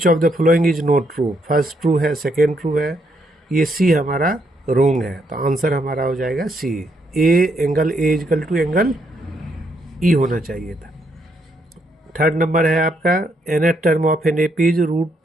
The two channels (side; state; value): both; normal; correlation 0.75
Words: of the following is not true. First true है, सेकेंड ट्रू है, ये सी हमारा रोंग है, तो आंसर हमारा हो जाएगा C. Angle A equal to angle E होना चाहिए था। थर्ड नंबर है आपका nth term of an AP is